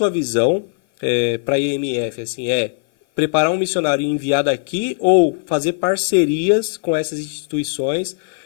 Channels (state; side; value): silent; right; 56 dB below the other